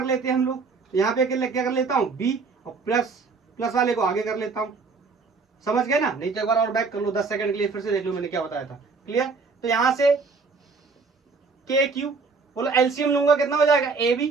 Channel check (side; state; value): left; quieter; 4.6 dB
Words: लेते हैं हम लोग, तो यहाँ पे क्या कर लेता हूँ b, और प्लस वाले को आगे कर लेता हूँ। समझ गए ना, नहीं तो एक बार और बैक कर लो 10 सेकंड के लिए, फिर से देख लो मैंने क्या बताया था, क्लियर। तो यहाँ से k q, बोलो एलसीएम लूंगा कितना हो जाएगा ab,